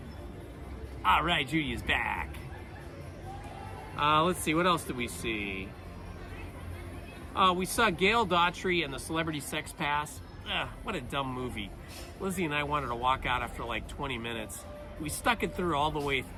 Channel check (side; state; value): both; identical; correlation 1.00